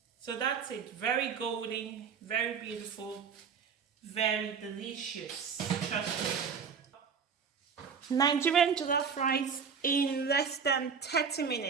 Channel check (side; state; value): left; quieter; 6.3 dB